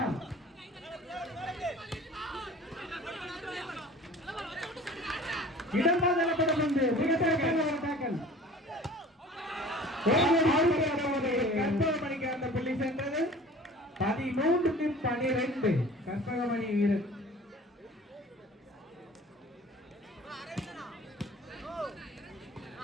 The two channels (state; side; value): normal; both; correlation 0.45